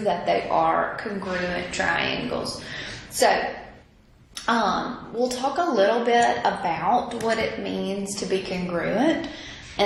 that they are congruent triangles. So, we'll talk a little bit about what it means to be congruent,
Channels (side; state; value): both; identical; correlation 1.00